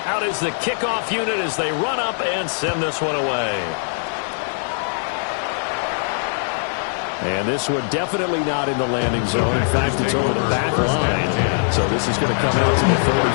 Out is the kickoff unit as they run up and send this one away. And this one definitely not in the landing zone. In fact, it's over the back line. So this is going to come out to the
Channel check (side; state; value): right; silent; digital silence